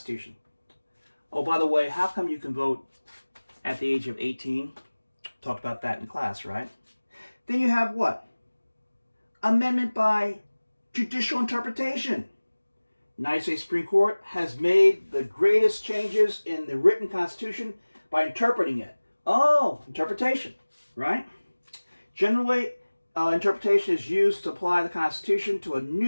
Oh, by the way, how come you can vote at the age of 18? Talked about that in class, right? Then you have what? Amendment by judicial interpretation. United States Supreme Court has made the greatest changes in the written Constitution by interpreting it. Oh, interpretation, right? Generally, interpretation is used to apply the Constitution to a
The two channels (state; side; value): inverted; both; correlation -1.00